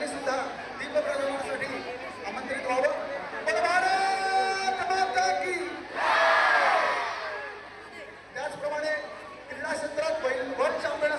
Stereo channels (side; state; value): both; identical; correlation 1.00